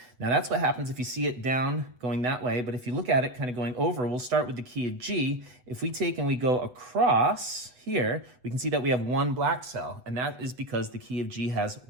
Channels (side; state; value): left; late; 8.0 ms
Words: Now that's what happens if you see it down going that way, but if you look at it kind of going over, we'll start with the key of G. If we take and we go across here, we can see that we have one black cell, and that is because the key of G has